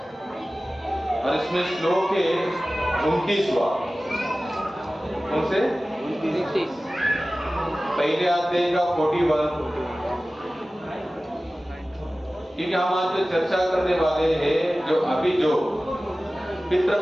और इसमें श्लोक है 29वां। कौन से? 29। पहले अध्याय का 41। क्योंकि हम आज जो चर्चा करने वाले हैं, जो अभी जो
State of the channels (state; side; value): normal; both; correlation 0.96